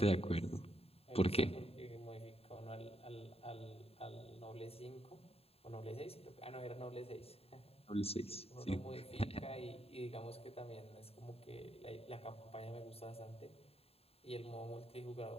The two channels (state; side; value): late; right; 0.29 ms